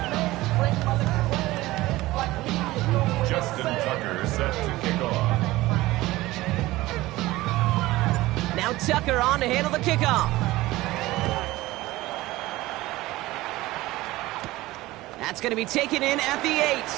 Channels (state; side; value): quieter; left; 18.3 dB